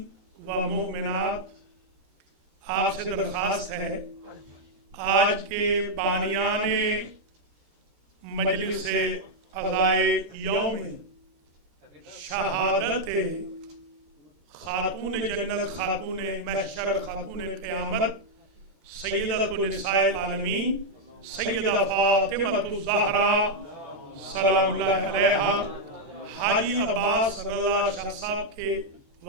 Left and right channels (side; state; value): left; late; 13 ms